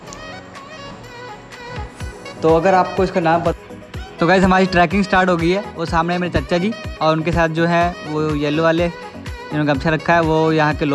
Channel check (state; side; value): identical; both; correlation 1.00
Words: तो अगर आपको इसका नाम पता, तो गाइस हमारी ट्रैकिंग स्टार्ट हो गई है। वो सामने मेरे चाचा जी और उनके साथ जो है वो येलो वाले जिन्होंने गमछा रखा है, वो यहाँ के